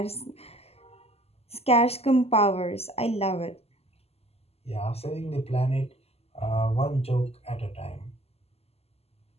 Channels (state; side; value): late; right; 0.29 ms